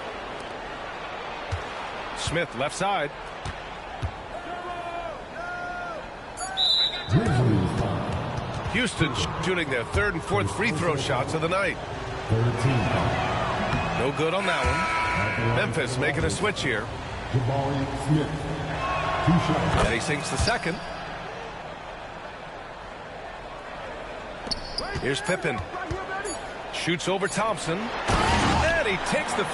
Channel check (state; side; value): identical; both; correlation 1.00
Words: Smith left side. Houston shooting their 3rd and 4th free throw shots of the night. No good on that one. Memphis making a switch here. And he sinks the second. Here's Pippen. Shoots over Thompson. And he takes the